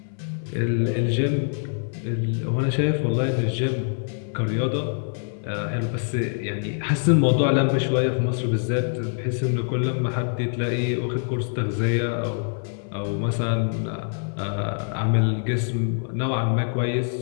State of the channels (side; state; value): right; silent; 62 dB below the other